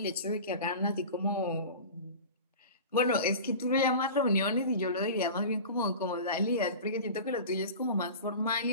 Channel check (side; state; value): both; inverted; correlation -0.34